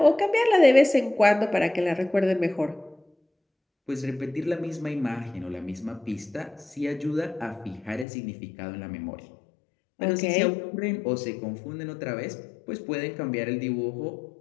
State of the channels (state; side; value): drops out; right; at 8.1 s